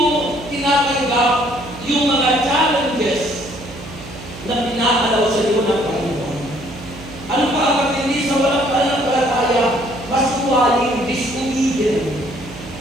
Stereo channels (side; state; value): right; noise; hum, 15 dB below the sound